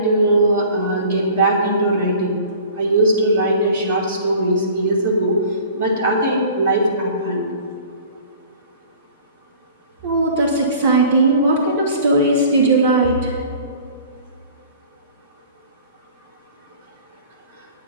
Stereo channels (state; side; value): inverted; both; correlation -0.46